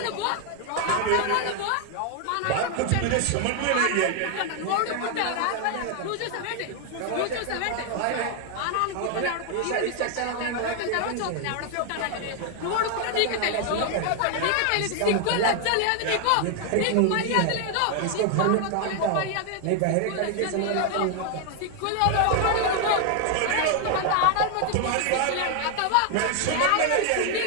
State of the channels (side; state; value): both; different; correlation 0.00